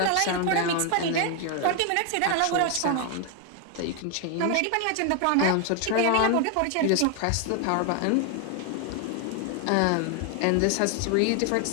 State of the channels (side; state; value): both; different; correlation 0.01